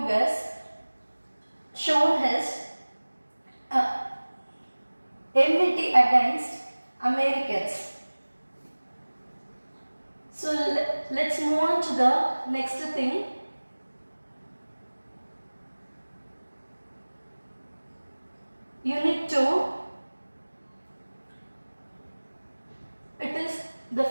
shown his enmity against Americans. So let's move on to the next thing. Unit 2, it is the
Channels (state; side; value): inverted; both; correlation -1.00